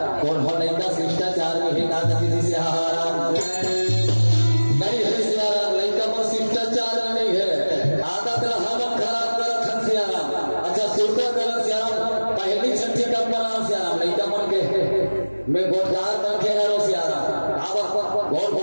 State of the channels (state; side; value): inverted; both; correlation -1.00